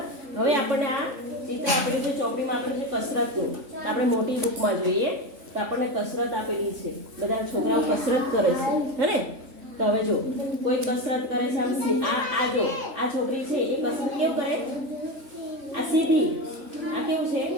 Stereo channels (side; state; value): left; late; 3.5 ms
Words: હવે આપણને આ ચિત્ર આપેલું છે ચોપડીમાં, આપેલું છે કસરતનું. તો આપણે મોટી બુકમાં જોઈએ તો આપણને કસરત આપેલી છે. બધા છોકરાઓ કસરત કરે છે, હે ને. તો હવે જો કોઈ કસરત કરે છે, આ જો આ છોકરી છે એ કસરત કેવું કરે, આ સીધી, આ કેવું છે,